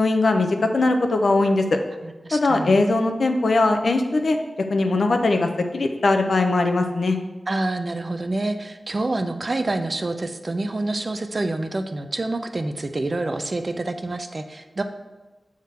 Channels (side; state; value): both; normal; correlation 0.93